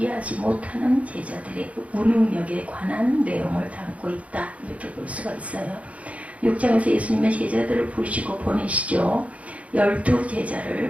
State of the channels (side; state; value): left; late; 0.065 ms